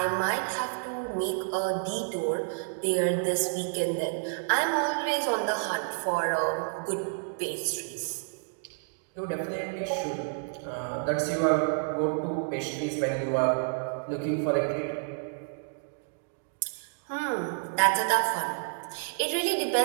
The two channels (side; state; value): left; silent; digital silence